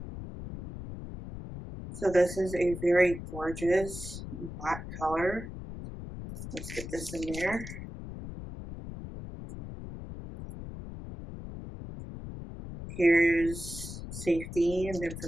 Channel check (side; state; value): left; noise; rumble, 10 dB below the sound